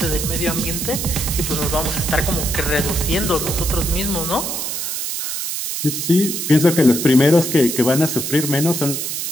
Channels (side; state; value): right; noise; hiss, 3 dB below the sound